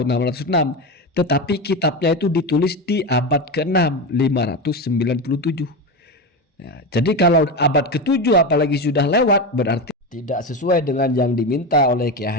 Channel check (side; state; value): both; normal; correlation 0.18